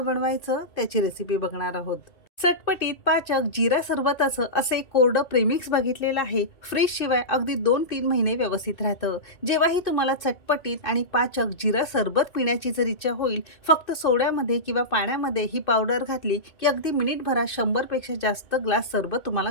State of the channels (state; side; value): late; right; 2.6 ms